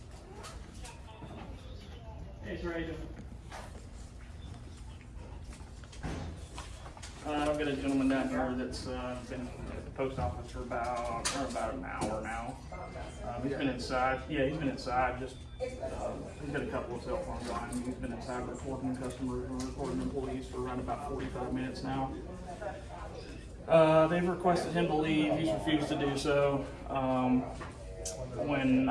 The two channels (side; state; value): both; identical; correlation 1.00